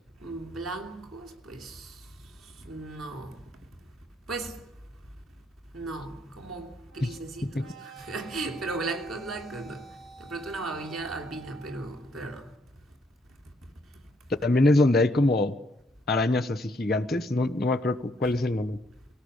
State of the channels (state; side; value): normal; both; correlation 0.71